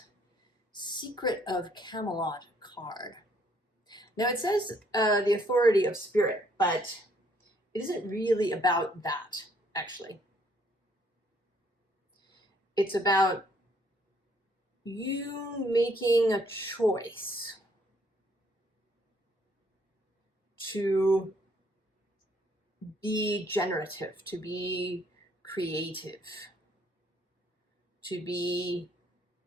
Secret of Camelot card. Now it says the authority of spirit, but it isn't really about that, actually. It's about you making a choice to be generative, to be creative, to be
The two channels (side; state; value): both; normal; correlation 0.66